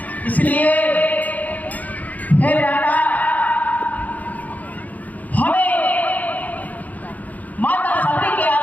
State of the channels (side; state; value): right; late; 0.078 ms